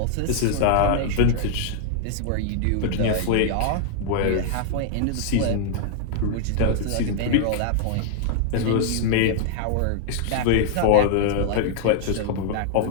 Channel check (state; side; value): different; both; correlation 0.00